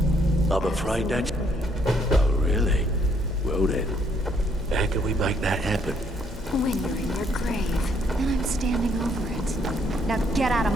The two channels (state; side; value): normal; both; correlation 0.69